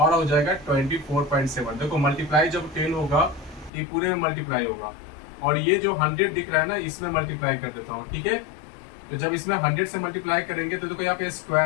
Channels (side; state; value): right; drops out; at 3.7 s